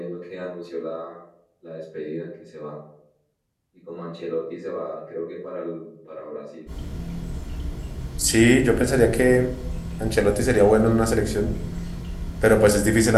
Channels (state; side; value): identical; both; correlation 1.00